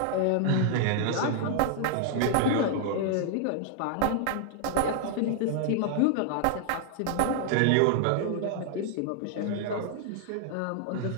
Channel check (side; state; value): both; different; correlation 0.00